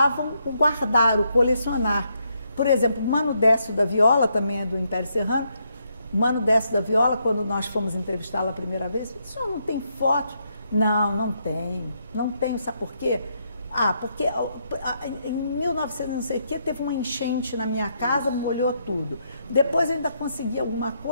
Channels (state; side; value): inverted; both; correlation -0.77